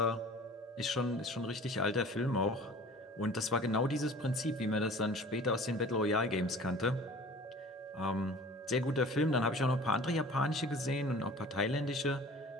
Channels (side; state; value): both; normal; correlation 0.44